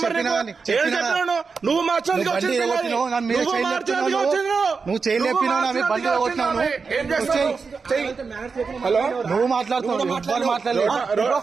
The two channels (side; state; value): left; quieter; 5.0 dB